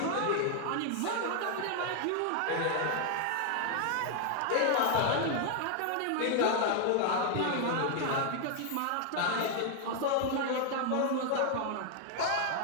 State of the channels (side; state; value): both; different; correlation 0.00